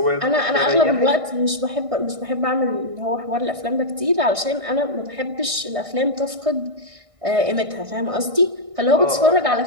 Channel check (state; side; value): late; left; 1.6 ms